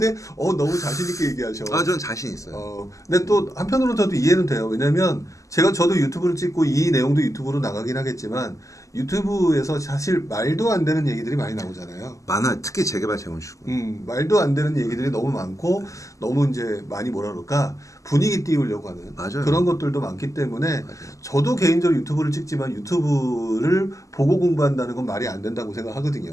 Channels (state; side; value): late; right; 0.16 ms